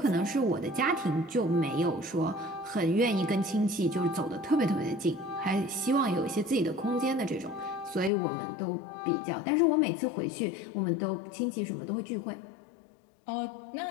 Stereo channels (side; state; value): right; drops out; at 8.1 s